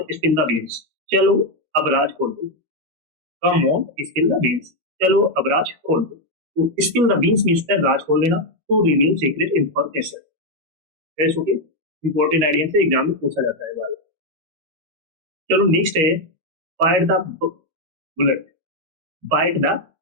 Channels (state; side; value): late; left; 13 ms